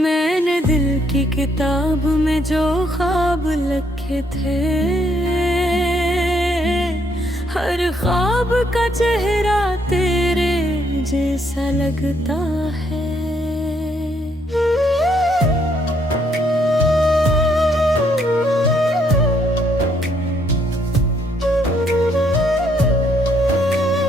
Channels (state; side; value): normal; both; correlation 0.71